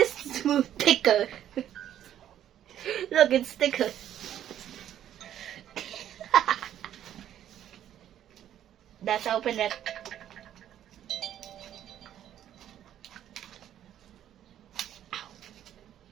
smooth thicker? Look, it's thicker. Let's open it.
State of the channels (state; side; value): quieter; left; 11.0 dB